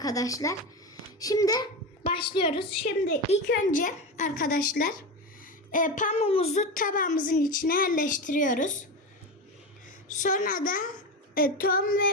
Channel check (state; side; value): normal; both; correlation 0.20